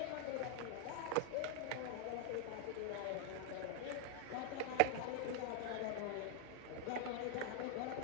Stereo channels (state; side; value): different; both; correlation 0.00